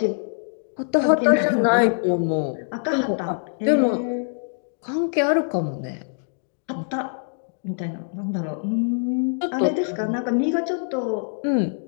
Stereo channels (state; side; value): silent; right; digital silence